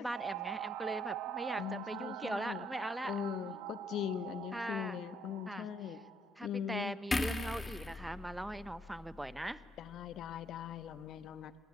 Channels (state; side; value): normal; both; correlation 0.71